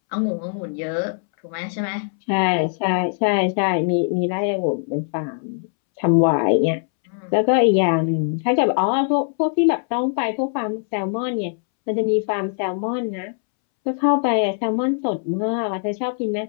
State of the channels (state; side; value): silent; right; 65 dB below the other